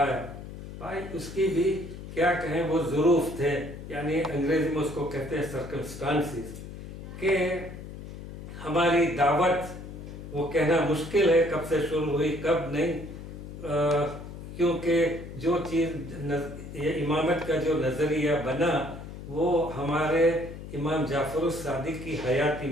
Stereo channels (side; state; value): left; noise; hum, 11 dB below the sound